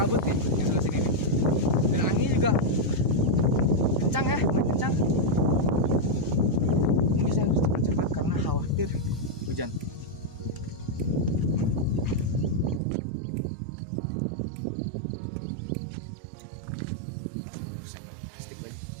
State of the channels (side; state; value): left; drops out; at 12.8 s